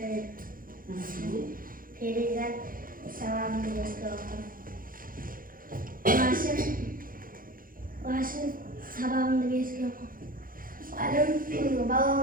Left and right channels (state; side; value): late; left; 0.41 ms